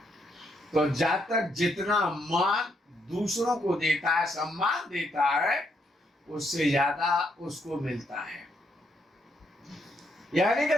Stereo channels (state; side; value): normal; both; correlation 0.75